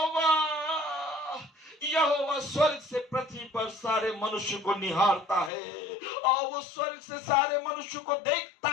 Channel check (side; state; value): right; drops out; at 5.5 s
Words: यहोवा स्वर्ग से पृथ्वी पर सारे मनुष्य को निहारता है और वो स्वर्ग से सारे मनुष्य को देखता